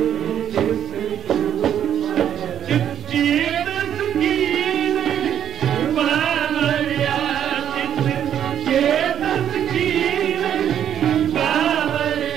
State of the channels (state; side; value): quieter; left; 9.6 dB